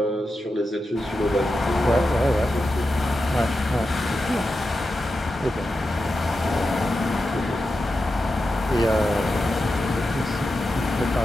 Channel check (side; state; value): both; normal; correlation 0.90